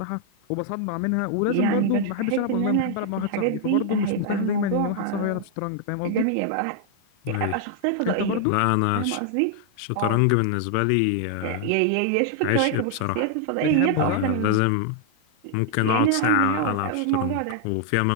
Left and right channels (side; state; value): both; different; correlation 0.00